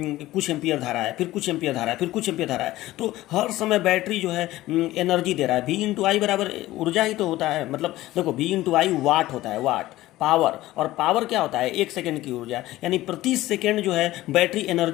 कुछ एम्पियर धारा है, फिर कुछ एम्पियर धारा है, फिर कुछ एम्पियर धारा है, तो हर समय बैटरी जो है एनर्जी दे रहा है। V इंटू आई बराबर ऊर्जा ही तो होता है, मतलब देखो V इंटू आई वाट होता है, वाट पावर, और पावर क्या होता है? 1 सेकंड की ऊर्जा, यानी प्रति सेकंड जो है बैटरी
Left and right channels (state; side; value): quieter; right; 16.4 dB